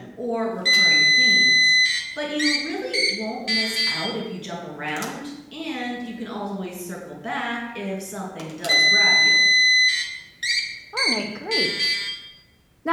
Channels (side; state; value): both; identical; correlation 1.00